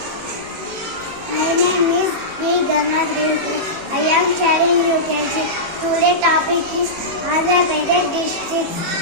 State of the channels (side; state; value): left; late; 18 ms